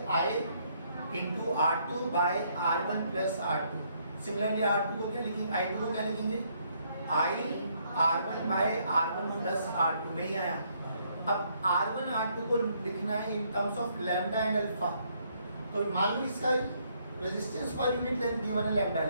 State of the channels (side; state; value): both; inverted; correlation -0.70